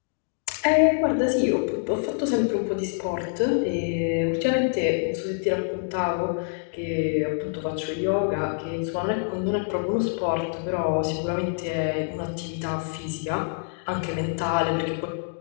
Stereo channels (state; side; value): silent; right; digital silence